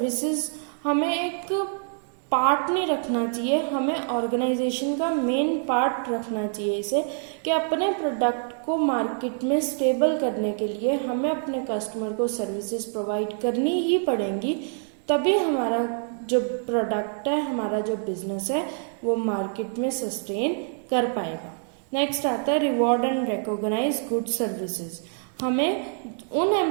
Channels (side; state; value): left; silent; 61 dB below the other